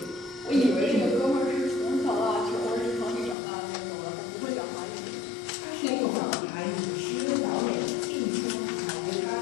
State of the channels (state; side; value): drops out; right; at 3.4 s